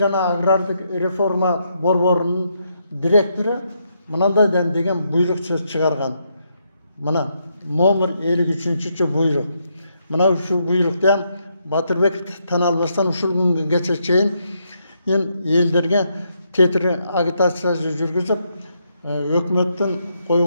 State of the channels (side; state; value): both; inverted; correlation -0.78